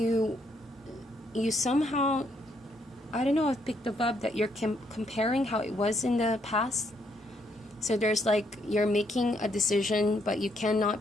somehow, I don't know, I've picked the vibe that you're comparing how it was in the past. So there's like you're making a decision, but you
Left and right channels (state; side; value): normal; both; correlation 0.73